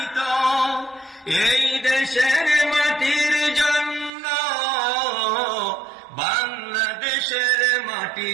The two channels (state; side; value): drops out; left; at 4.1 s